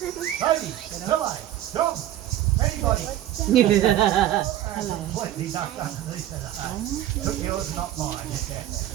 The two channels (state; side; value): quieter; left; 13.0 dB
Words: Baby, Phil, jump. Anybody. Completely knocked underneath that. Took yours, not mine.